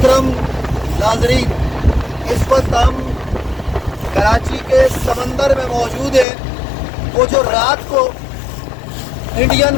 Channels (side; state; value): right; drops out; at 6.2 s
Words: ناظرین، اس وقت ہم کراچی کے سمندر میں موجود ہیں۔ وہ جو رات کو انڈین